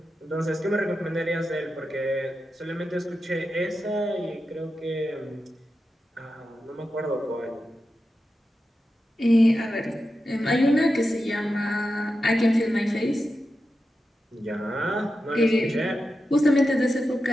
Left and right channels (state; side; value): normal; both; correlation 0.90